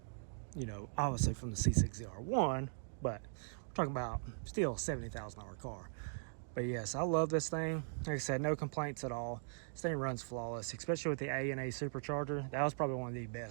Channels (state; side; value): silent; left; digital silence